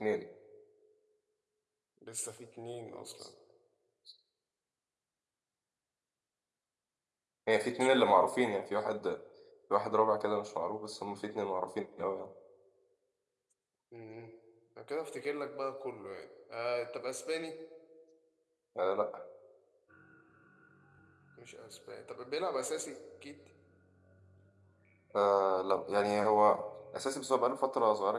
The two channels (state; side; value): identical; both; correlation 1.00